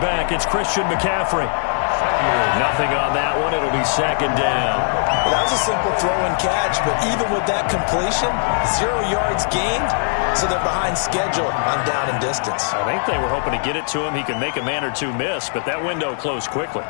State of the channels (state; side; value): silent; right; 61 dB below the other